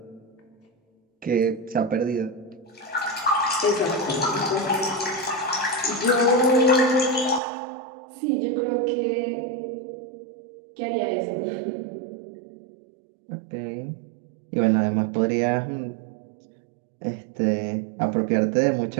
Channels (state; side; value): drops out; left; at 7.4 s